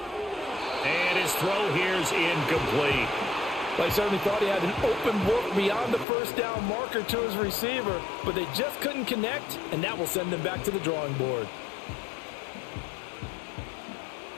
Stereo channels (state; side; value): drops out; right; at 6.1 s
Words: And his throw here's incomplete. Well, he certainly thought he had an open look beyond the first down marker to his receiver, but they just couldn't connect, and that will send them back to the drawing board.